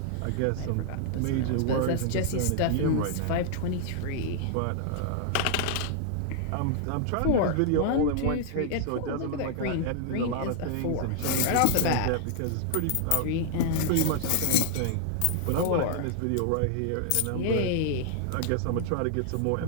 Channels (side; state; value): both; different; correlation -0.01